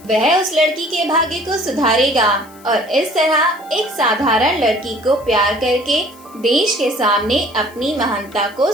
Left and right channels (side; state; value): left; noise; hiss, 25 dB below the sound